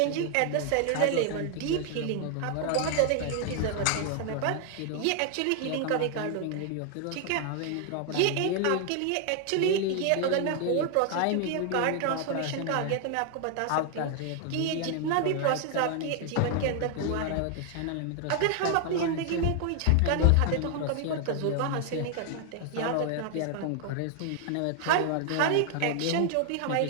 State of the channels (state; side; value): different; both; correlation 0.00